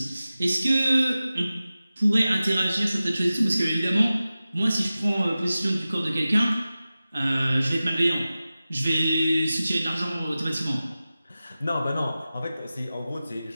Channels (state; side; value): inverted; both; correlation -0.95